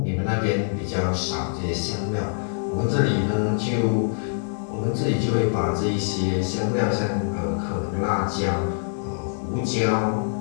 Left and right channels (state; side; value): silent; right; 62 dB below the other